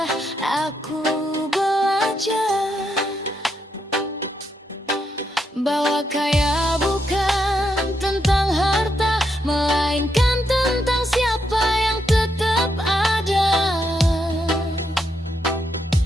aku belajar bahwa kaya bukan tentang harta, melainkan tentang siapa yang tetap ada.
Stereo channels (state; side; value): normal; both; correlation 0.80